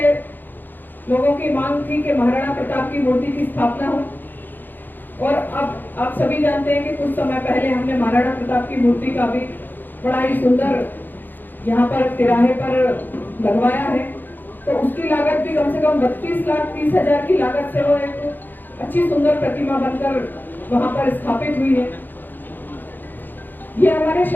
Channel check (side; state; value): right; late; 0.090 ms